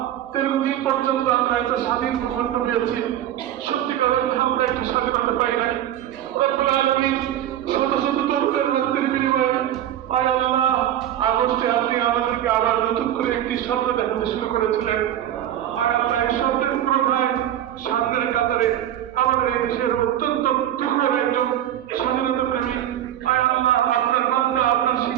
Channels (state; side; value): quieter; left; 11.6 dB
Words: দীর্ঘদিন পর্যন্ত আমরা একটা স্বাধীন ভূখণ্ড পেয়েছি, সত্যিকার অর্থে আমরা একটি স্বাধীনতা পাই নাই। রব্বুল আলামিন শত শত তরুণের রক্তের বিনিময়ে আয় আল্লাহ আগস্টে আপনি আমাদেরকে আবার নতুন করে একটি স্বপ্ন দেখাতে শুরু করেছিলেন। আয় আল্লাহ, এই স্বপ্নের পুরোটাই সামনের কাতারে আমাদের এই দেশের অত্যন্ত তুখর একজন স্বাধীনতা প্রেমী আয় আল্লাহ আপনার বান্দা, আপনার